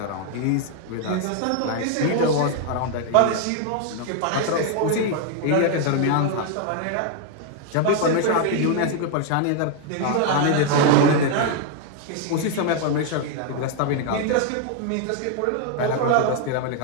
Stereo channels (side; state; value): both; different; correlation 0.00